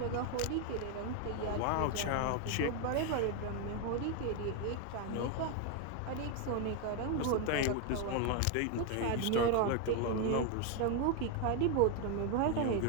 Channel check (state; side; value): different; both; correlation 0.01